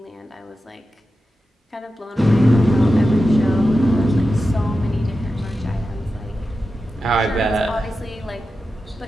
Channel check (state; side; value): normal; both; correlation 0.92